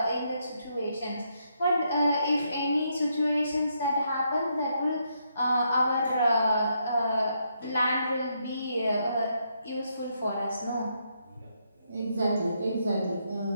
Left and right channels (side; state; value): both; inverted; correlation -0.77